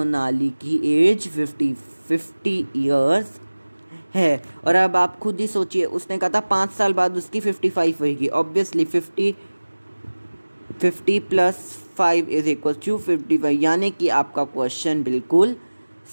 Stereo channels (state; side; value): inverted; both; correlation -1.00